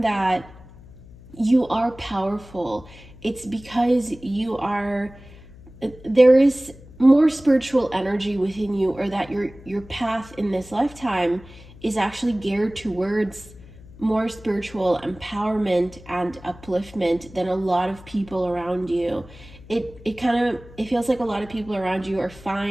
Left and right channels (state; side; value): noise; left; hum, 20 dB below the sound